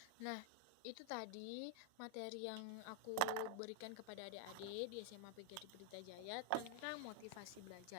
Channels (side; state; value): both; different; correlation -0.01